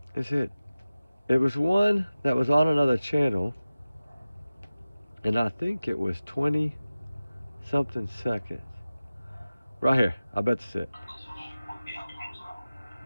Is it? It was one that was on another channel, and I think it was 20-something seconds. Right here, I bet that's it.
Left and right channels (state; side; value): inverted; both; correlation -0.95